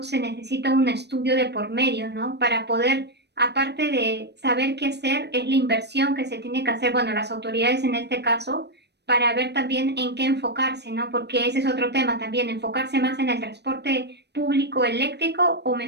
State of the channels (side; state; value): left; late; 0.49 ms